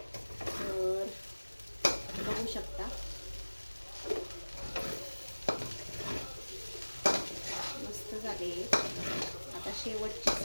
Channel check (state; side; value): inverted; both; correlation -1.00